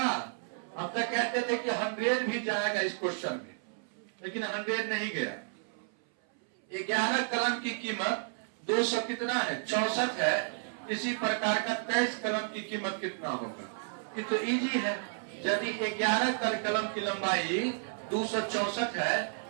हम तो कहते थे कि 100 भी जाएगा इस क्वेश्चन में, लेकिन 100 नहीं गया। 11 कलम की कीमत 200 कितना है? 64 है। इसी प्रकार का 23 कलम की कीमत कितना होगा? ये तो इजी है। यदि 11 कलम की लंबाई 264 है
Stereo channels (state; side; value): silent; left; 56 dB below the other